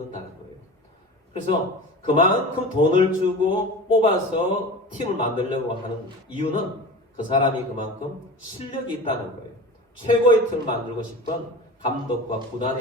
거예요. 그래서 그만큼 돈을 주고 뽑아서 팀을 만들려고 하는 이유는 그 사람이 그만큼 실력이 있다는 거예요. 최고의 팀을 만들고 싶은 감독과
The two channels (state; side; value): normal; both; correlation 0.34